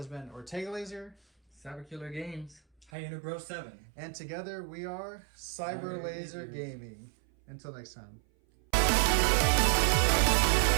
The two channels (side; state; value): left; drops out; at 2.9 s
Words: been Ortega Laser, Cyber Killer Games, Hyena Bro 7. and together we are Cyber Laser Gaming. Until next time.